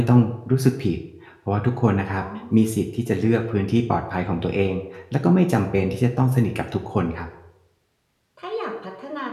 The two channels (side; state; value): both; identical; correlation 1.00